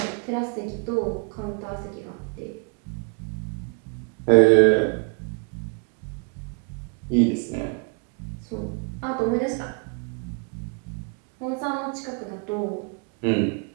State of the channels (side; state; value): left; quieter; 37.5 dB